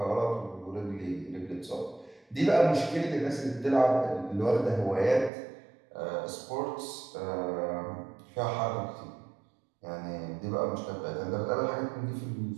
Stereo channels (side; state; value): left; drops out; at 5.3 s